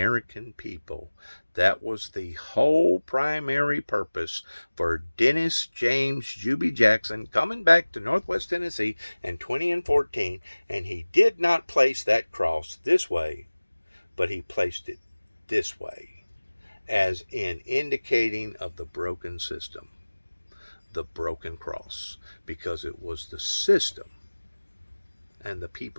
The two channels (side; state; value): both; inverted; correlation -1.00